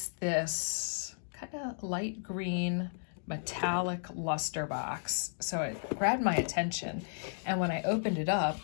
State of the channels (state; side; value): silent; right; digital silence